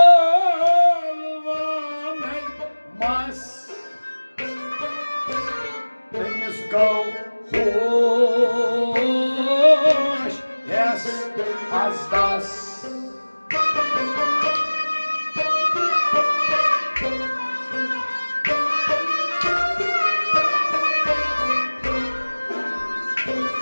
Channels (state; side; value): inverted; both; correlation -1.00